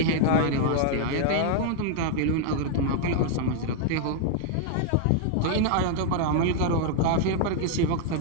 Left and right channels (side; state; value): both; different; correlation 0.00